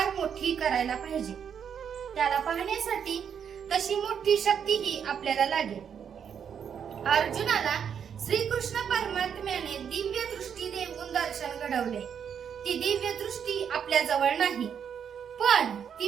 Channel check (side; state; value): left; quieter; 7.8 dB